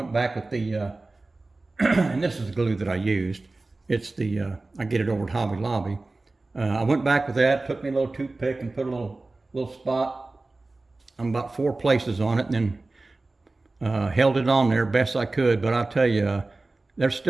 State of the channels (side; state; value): left; quieter; 3.2 dB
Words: back with the, and this is the glue that I used. It's the, I get it over at Hobby Lobby. I went back with that, took me a little toothpick and put a little spot on about 4 places on it, and then held it on there best I could. But I'll tell you, there's